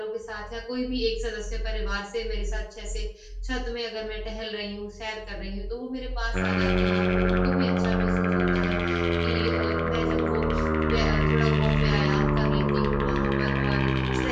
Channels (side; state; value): both; identical; correlation 1.00